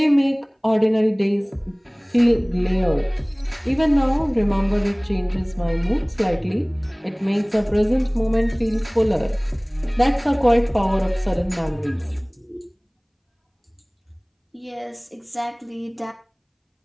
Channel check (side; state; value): both; identical; correlation 1.00